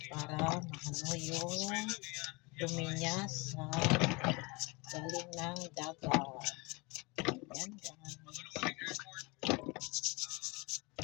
para maano yung dumi niya sa galing ng dagat. Yan guys.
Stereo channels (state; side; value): quieter; right; 27.1 dB